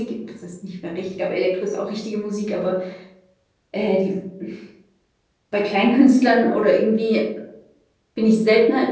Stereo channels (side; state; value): both; identical; correlation 1.00